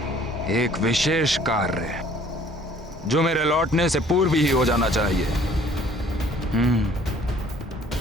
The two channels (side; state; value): both; normal; correlation 0.56